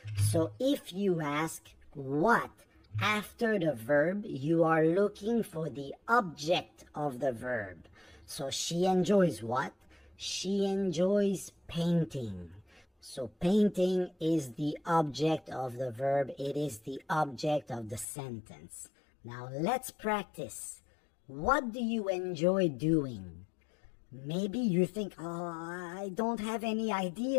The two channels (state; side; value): drops out; right; at 18.1 s